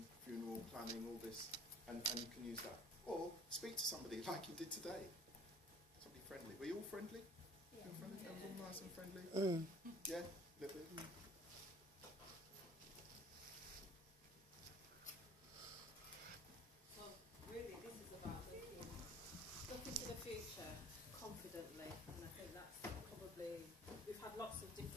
funeral planning, all this, and you can use that. Or speak to somebody like you did today. Somebody friendly. Were you all friendly? Yeah. Friendly? Yeah. All nice and friendly? Yeah? A little bit? So really this is about looking to the future confidently, and I think that's probably, we've had lots of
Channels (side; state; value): both; normal; correlation 0.51